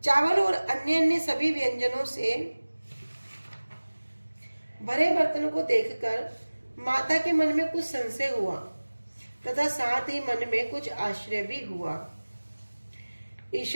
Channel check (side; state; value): both; inverted; correlation -1.00